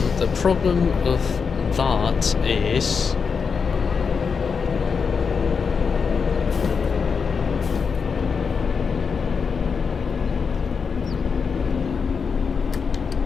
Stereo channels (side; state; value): right; quieter; 5.7 dB